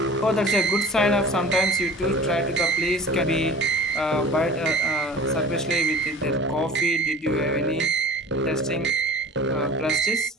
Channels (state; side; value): normal; both; correlation 0.41